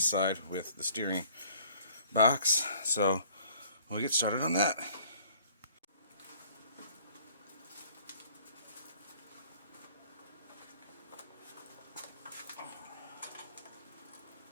side with the steering box. So we'll get started on that.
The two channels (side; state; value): both; inverted; correlation -0.56